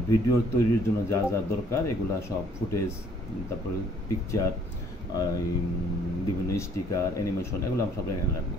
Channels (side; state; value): both; normal; correlation 0.61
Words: ভিডিও তৈরির জন্য যা যা দরকার এগুলা সব ফুটেজ, তারপরে পিকচার, বিভিন্ন স্টিকার, অ্যানিমেশন, এগুলো আমরা সব এখানে রাখবো,